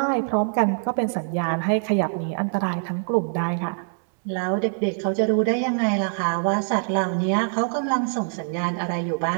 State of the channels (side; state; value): left; silent; digital silence